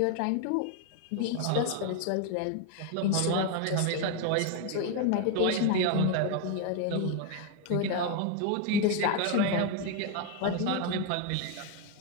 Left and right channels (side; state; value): both; different; correlation 0.01